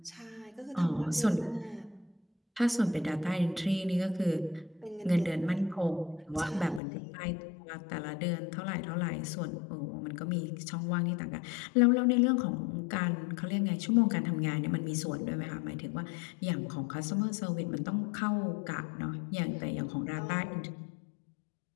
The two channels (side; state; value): right; drops out; at 6.8 s